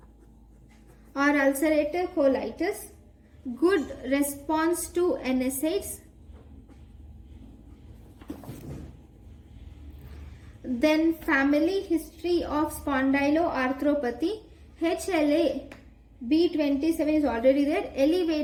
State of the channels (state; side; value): identical; both; correlation 1.00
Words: or ulcerative colitis, good response to NSAIDs. Then family history of spondyloarthropathy, HLA-B27 is already there,